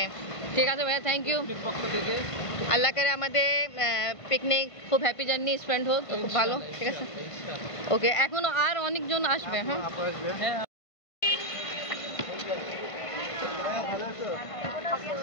ঠিক আছে ভাইয়া, থ্যাংক ইউ। আল্লাহ করে আমাদের পিকনিক খুব হ্যাপি জার্নি স্পেন্ড হোক, খুব ভালো। ঠিক আছে, ওকে। এখনো আর অনেকজন আসবে। হ্যাঁ,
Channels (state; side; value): late; right; 1.5 ms